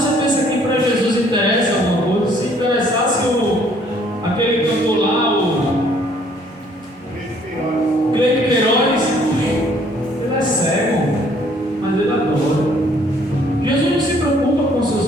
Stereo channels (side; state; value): both; normal; correlation 0.61